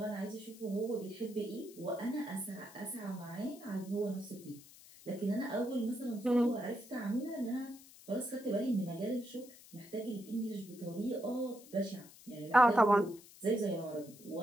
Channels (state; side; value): noise; left; hiss, 20 dB below the sound